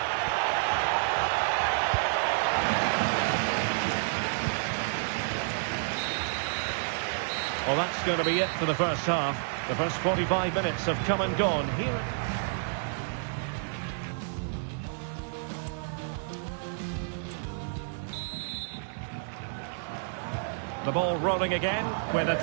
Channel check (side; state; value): left; silent; digital silence